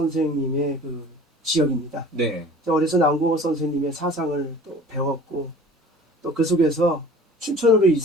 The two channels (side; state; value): both; normal; correlation 0.44